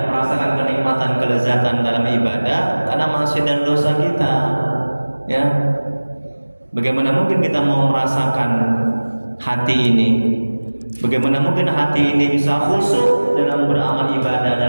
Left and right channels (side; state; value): both; inverted; correlation -1.00